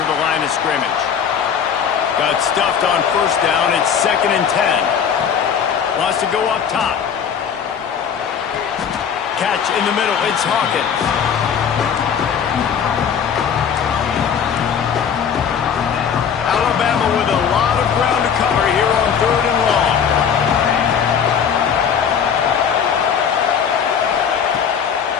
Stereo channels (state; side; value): quieter; right; 7.5 dB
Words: the line of scrimmage. Got stuffed on first down. It's 2nd and 10. Wants to go up top. Catch in the middle. It's Hawkins. Alabama with a lot of ground to cover here on third and long.